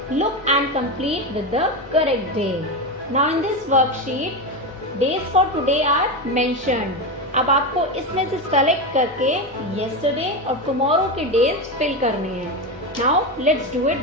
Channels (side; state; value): both; normal; correlation 0.16